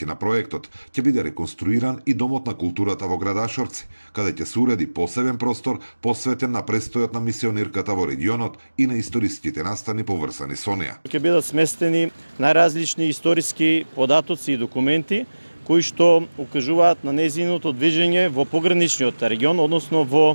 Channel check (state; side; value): inverted; both; correlation -1.00